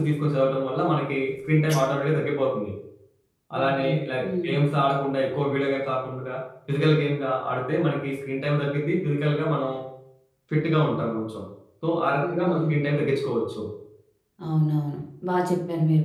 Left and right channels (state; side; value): identical; both; correlation 1.00